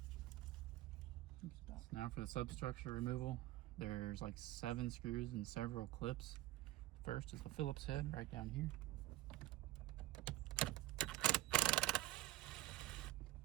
So now for the substructure removal, there's like 7 screws and several clips. First is the Phillips head right down here.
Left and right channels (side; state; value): left; quieter; 16.7 dB